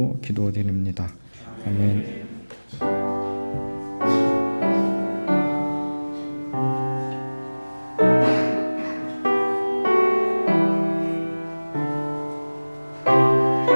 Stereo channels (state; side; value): inverted; both; correlation -1.00